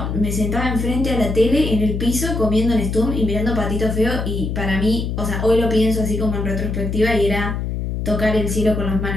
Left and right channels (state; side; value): noise; left; hum, 3 dB below the sound